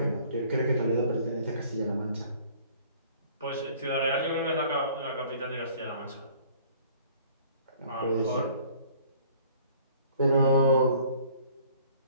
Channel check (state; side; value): inverted; both; correlation -0.55